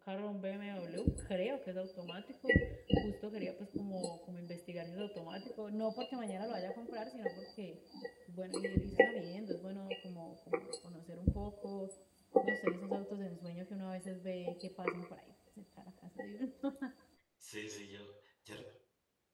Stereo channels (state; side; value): identical; both; correlation 1.00